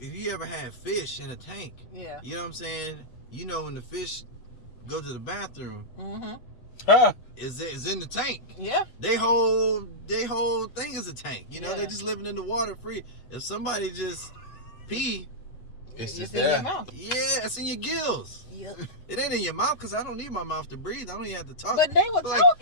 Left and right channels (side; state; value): right; late; 8.2 ms